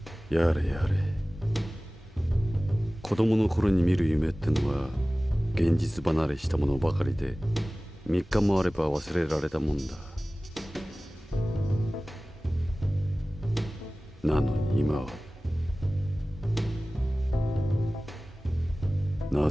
やれやれ。子供の頃に見る夢ってのは現実離れしたものばかりで、3日もあれば忘れられたもんだ。なのに今は、な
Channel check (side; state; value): both; normal; correlation 0.98